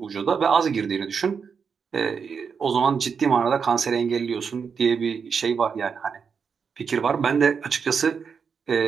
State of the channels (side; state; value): left; quieter; 6.1 dB